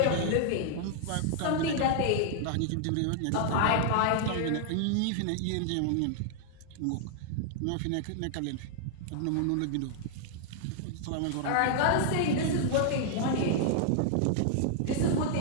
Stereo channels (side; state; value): both; different; correlation -0.01